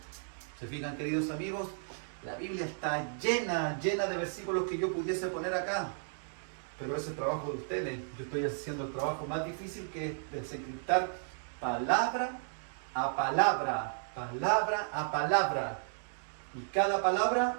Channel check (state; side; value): silent; left; digital silence